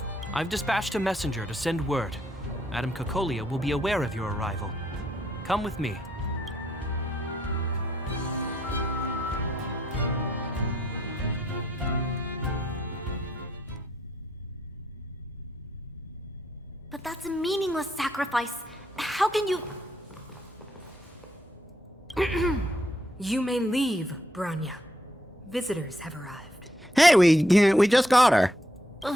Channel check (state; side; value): normal; both; correlation 0.74